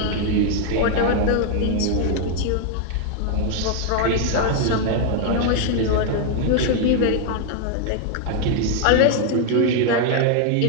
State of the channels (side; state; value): both; different; correlation 0.00